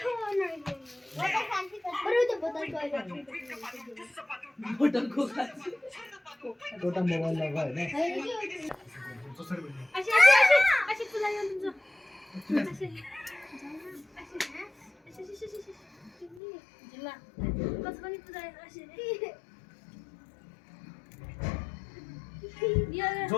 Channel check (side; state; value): right; drops out; at 16.4 s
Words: Hotel ko ka. छोटा मोबाइल लगा है ना अशी तुला येऊन तुझं जिल्हा कसं पण तुझा अशी